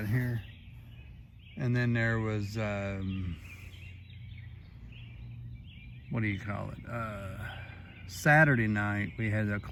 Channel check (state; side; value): identical; both; correlation 1.00